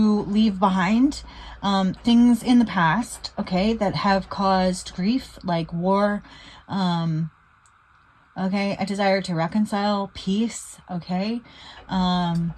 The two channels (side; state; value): both; identical; correlation 1.00